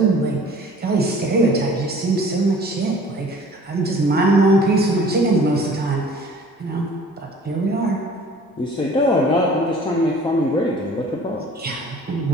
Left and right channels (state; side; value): normal; both; correlation 0.49